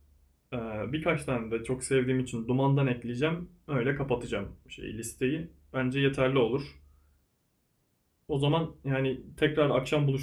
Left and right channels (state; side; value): identical; both; correlation 1.00